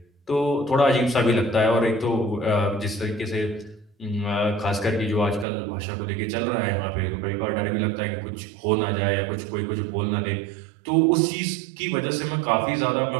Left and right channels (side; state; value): left; drops out; at 5.5 s